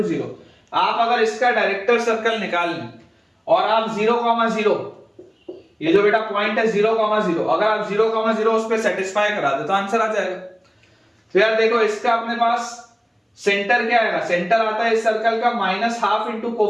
0, आप अगर इसका डायरेक्टर सर्कल निकाल लें और आप 0, 0 ये जो बेटा पॉइंट है 0, 0 अगर आप 0, 0 उस पर सेटिस्फाई करा दे तो आंसर आ जाएगा। तो यार देखो इसका अपने पास सेंटर क्या आएगा, सेंटर आता है इस सर्कल का minus half into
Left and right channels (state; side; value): identical; both; correlation 1.00